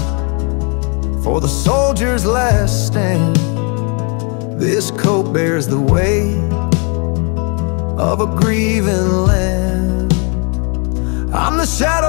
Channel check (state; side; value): quieter; right; 34.6 dB